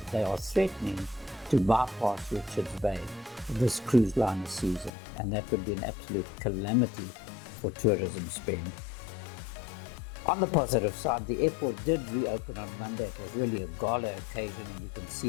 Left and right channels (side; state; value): right; drops out; at 4.9 s